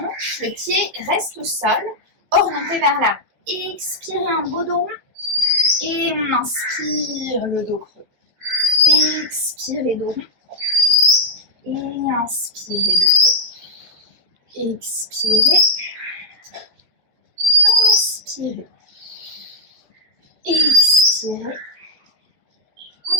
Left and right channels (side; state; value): left; late; 14 ms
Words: le pied reste au sol, orienté vers l'avant. Expirez un beau dos rond. Et on inspire le dos creux. Expirez dos rond. Et inspirez le creux. Expirez. Inspirez. Expirez.